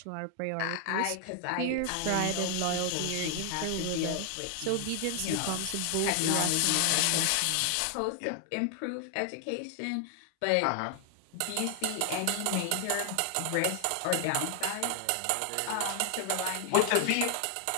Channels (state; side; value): different; both; correlation 0.00